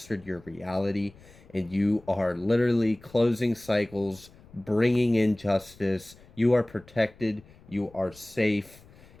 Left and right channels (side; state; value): left; noise; rumble, 24 dB below the sound